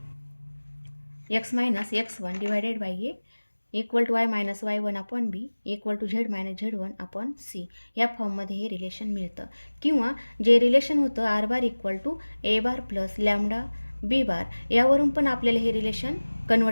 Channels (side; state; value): both; inverted; correlation -1.00